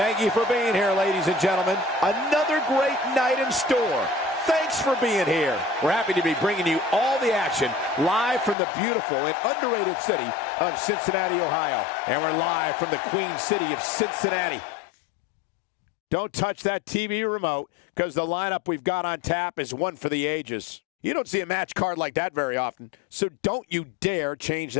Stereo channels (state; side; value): drops out; right; at 8.6 s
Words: you for being here, ladies and gentlemen. Another great night in store. Thanks for being here. We're happy to be bringing you all the action live from the beautiful and underrated city of Cincinnati, Ohio. And we're live from the Queen City of Cincinnati. Don't touch that TV remote, because the lineup we've got on tap is one for the ages. You don't see a match card like that very often, so don't you dare change